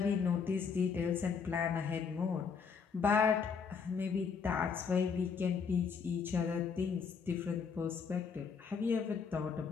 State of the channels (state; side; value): quieter; right; 5.9 dB